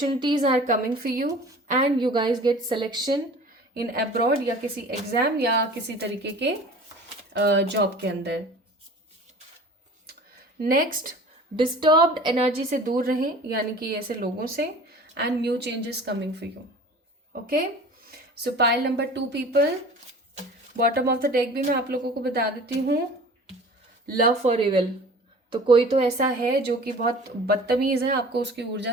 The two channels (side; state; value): both; normal; correlation 0.43